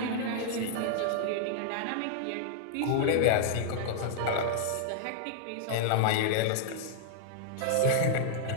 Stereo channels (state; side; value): different; both; correlation -0.01